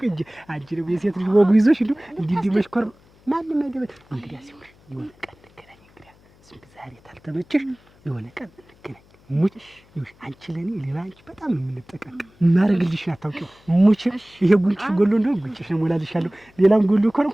እንጂ አንቺ ነው የሴት ልጅ ወጉ ይዞሽ እንዲህ መሽኮር ማንም አይደለም። እንግዲህ ሲሆን የሆነ ቀን እንገናኝ። እንግዲህ ዛሬ ታልተመቸሽ የሆነ ቀን እንገናኝ። ሙች ይሁን አንቺ ለኔ ሌላ አንቺ በጣም የምንጠቀቅ ማረግልሽ አታውቂው። ሙች ይሄ ጉንጭ ጎሎ እንደው ጉንጭሽ ነው ሞላልሻለሁ። ሌላም ጎሎ ከሆነ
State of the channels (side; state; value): left; noise; hum, 29 dB below the sound